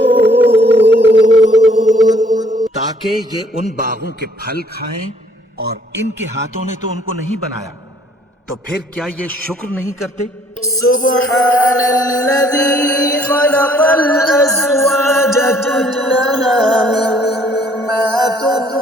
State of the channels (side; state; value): both; normal; correlation 0.61